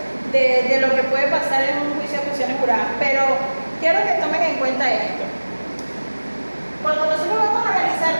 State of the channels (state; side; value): inverted; both; correlation -1.00